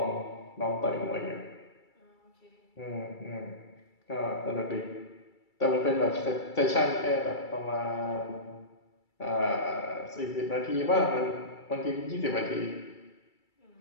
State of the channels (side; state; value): right; late; 2.3 ms